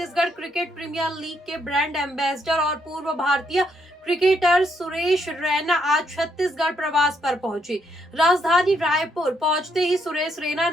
क्रिकेट प्रीमियर लीग के ब्रांड एम्बेसडर और पूर्व भारतीय क्रिकेटर सुरेश रैना आज छत्तीसगढ़ प्रवास पर पहुंचे। राजधानी रायपुर पहुंचते ही सुरेश रैना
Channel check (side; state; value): both; normal; correlation 0.75